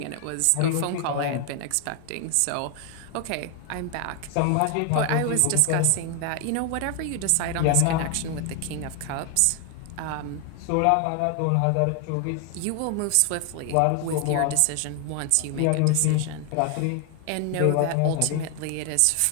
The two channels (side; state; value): both; different; correlation 0.00